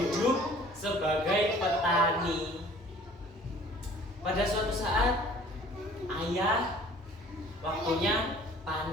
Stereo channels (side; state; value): both; normal; correlation 0.51